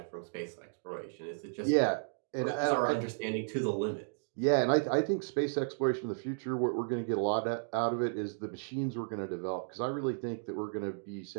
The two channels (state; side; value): silent; left; digital silence